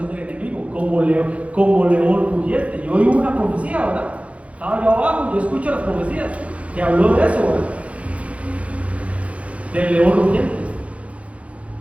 del enemigo, como león rugiente. Yo oí una profecía, ¿verdad? Estaba yo abajo, yo escucho las profecías que habló de eso, ¿verdad? Del león rugiente.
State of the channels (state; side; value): late; left; 0.064 ms